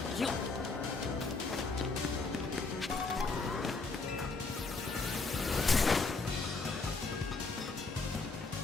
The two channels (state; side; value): quieter; right; 4.0 dB